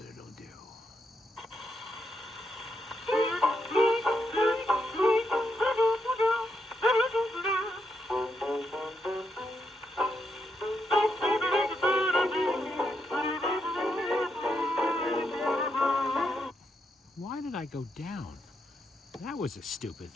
it'll do. Why did I go down? That was a stupid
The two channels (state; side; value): normal; both; correlation 0.81